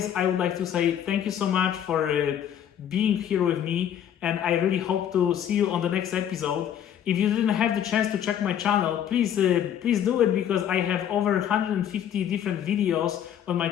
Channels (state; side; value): quieter; right; 9.7 dB